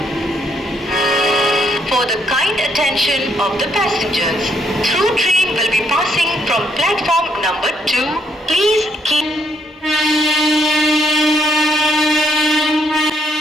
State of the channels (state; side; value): normal; both; correlation 0.72